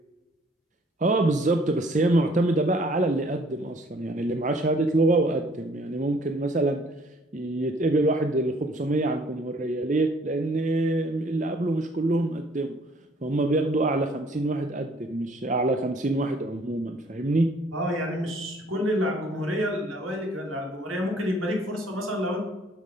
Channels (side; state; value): both; normal; correlation 0.59